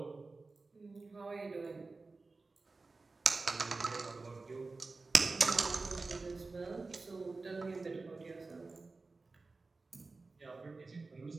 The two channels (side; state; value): left; quieter; 3.7 dB